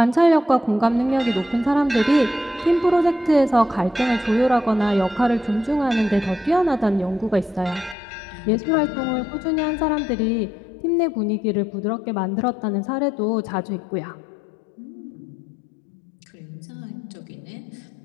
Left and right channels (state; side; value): drops out; right; at 8.0 s